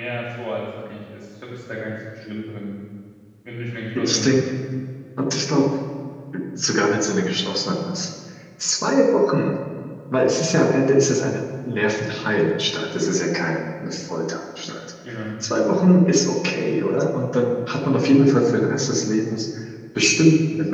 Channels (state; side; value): identical; both; correlation 1.00